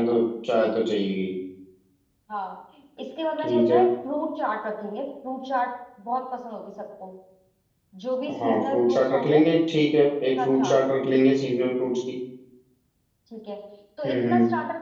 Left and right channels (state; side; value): identical; both; correlation 1.00